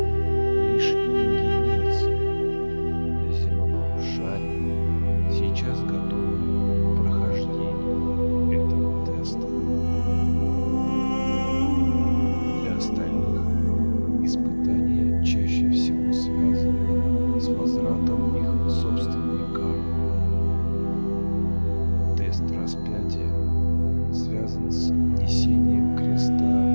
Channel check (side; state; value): both; inverted; correlation -1.00